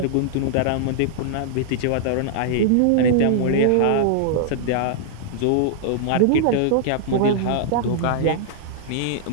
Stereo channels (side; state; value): both; different; correlation -0.01